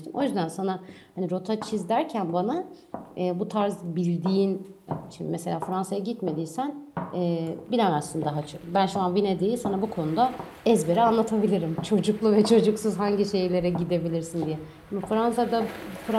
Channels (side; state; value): both; identical; correlation 1.00